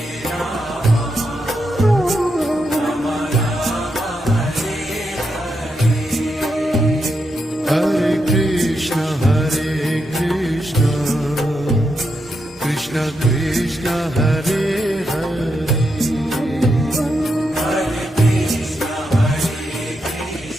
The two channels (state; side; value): normal; both; correlation 0.83